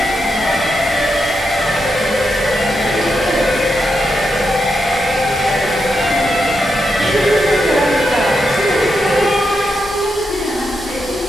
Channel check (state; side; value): noise; left; rumble, 21 dB below the sound